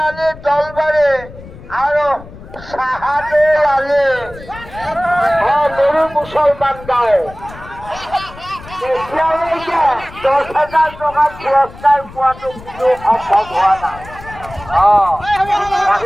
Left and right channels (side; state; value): left; noise; rumble, 17 dB below the sound